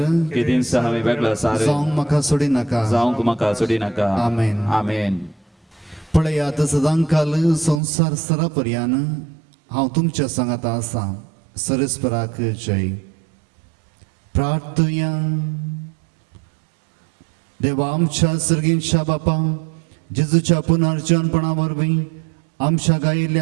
केदीन हांवें वेगळो सार जावंक म्हाका सोडी नाका. जावंक म्हाका सोडी नाका. आमेन. आमेन. पळयात सदांकाल संसार सरापर्यान हांव तुमच्या सांगाता आसा. सरस्पराक जय. प्रार्थया. देवा आमच्या सर्गींच्या बापा, जेजूच्या पुनर्जन्मपणा वरवीं आमच्या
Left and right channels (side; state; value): left; drops out; at 7.8 s